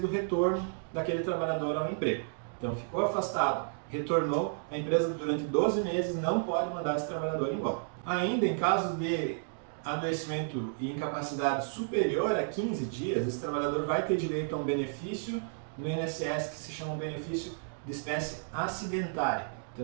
o retorno daquele trabalhador ao emprego. Então ficou afastado, retornou, a empresa durante 12 meses não pode mandar esse trabalhador embora. Ainda em casos de adoecimento e incapacidade superior a 15 dias, esse trabalhador vai ter direito a um benefício no INSS que se chama um benefício de espécie acidentária. Então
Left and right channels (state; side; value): silent; left; digital silence